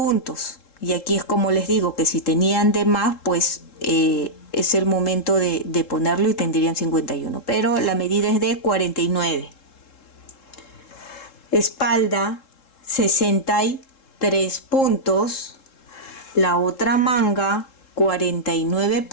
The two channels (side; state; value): right; late; 3.7 ms